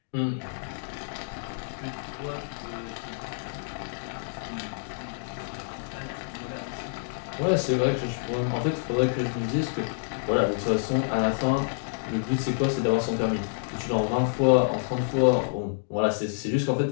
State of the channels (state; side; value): silent; right; digital silence